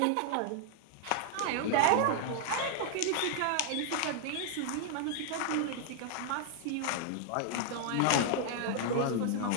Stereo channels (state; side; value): different; both; correlation 0.00